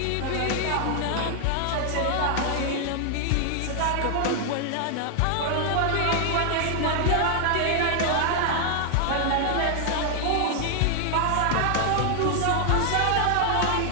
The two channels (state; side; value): different; both; correlation 0.00